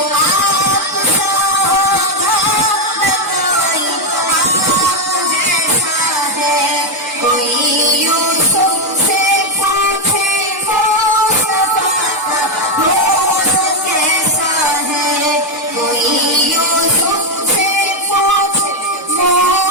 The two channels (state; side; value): normal; both; correlation 0.05